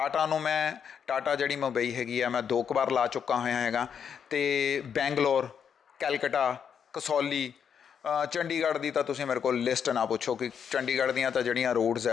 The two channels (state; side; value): quieter; right; 7.6 dB